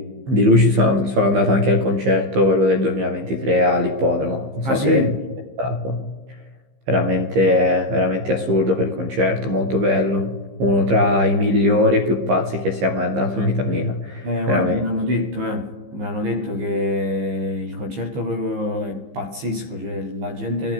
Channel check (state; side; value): late; left; 15 ms